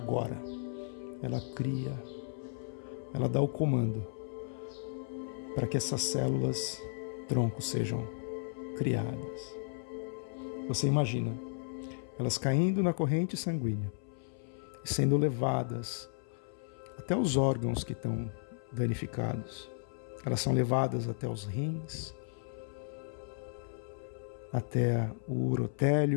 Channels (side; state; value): right; silent; 55 dB below the other